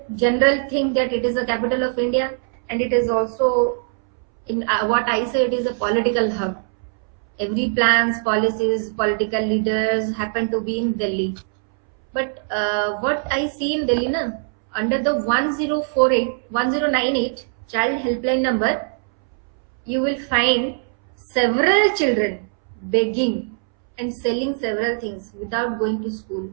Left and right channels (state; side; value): silent; left; 65 dB below the other